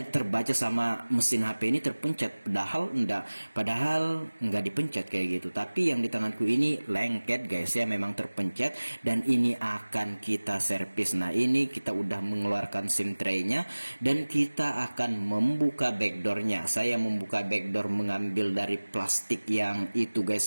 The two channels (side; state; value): both; inverted; correlation -1.00